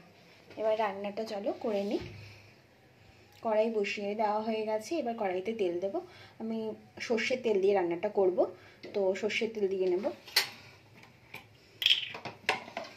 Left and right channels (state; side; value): identical; both; correlation 1.00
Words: এবার রান্নাটা চলো করে নিই। কড়াই বসিয়ে দেওয়া হয়ে গেছে, এবার কড়াইতে তেল দেব। আমি সর্ষের তেল দিয়ে রান্নাটা করব, তো সর্ষের তেল দিয়ে নেব।